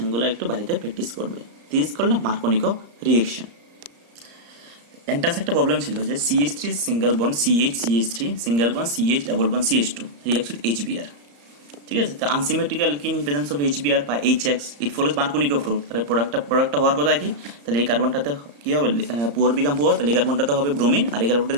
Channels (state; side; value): late; left; 35 ms